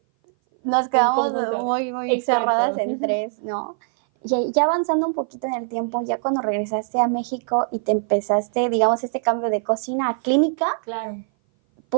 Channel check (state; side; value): silent; left; 58 dB below the other